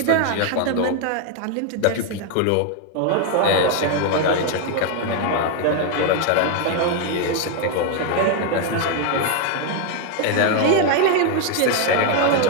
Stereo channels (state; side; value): different; both; correlation 0.01